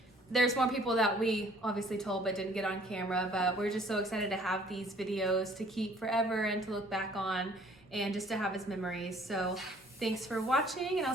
There's more people that we obviously told but didn't get on camera, but we're just so excited to have these videos to keep forever and to look back on and just to have as memories. So thanks for watching, and I'll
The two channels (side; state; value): both; normal; correlation 0.57